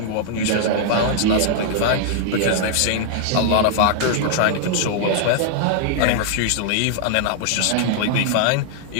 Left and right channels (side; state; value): both; different; correlation -0.01